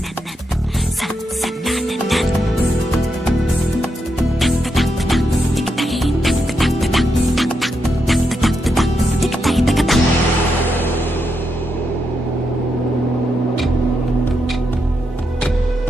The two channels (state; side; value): normal; both; correlation 0.83